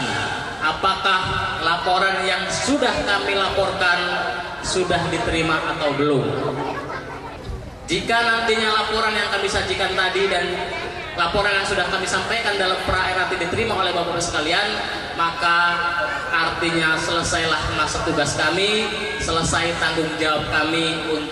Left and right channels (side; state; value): both; identical; correlation 1.00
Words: apakah laporan yang sudah kami laporkan sudah diterima atau belum. Jika nantinya laporan yang kami sajikan tadi dan laporan yang sudah kami sampaikan dalam pra-RAT diterima oleh Bapak Ibu sekalian, maka artinya selesailah masa tugas kami, selesai tanggung jawab kami